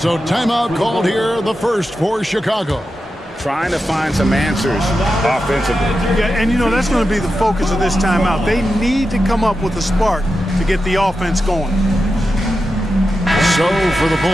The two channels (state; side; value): normal; both; correlation 0.90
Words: timeout called here, the first for Chicago. Trying to find some answers offensively. Yeah, and you know, that's going to be the focus of this timeout. They need to come up with a spark to get the offense going. So for the